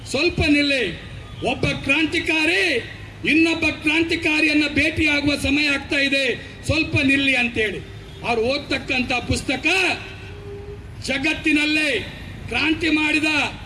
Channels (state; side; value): identical; both; correlation 1.00